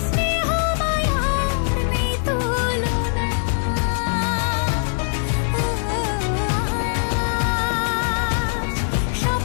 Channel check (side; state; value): right; silent; digital silence